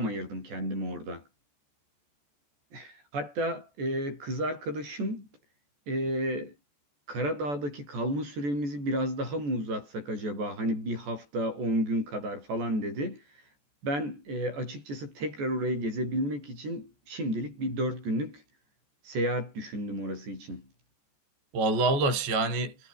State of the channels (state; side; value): late; left; 14 ms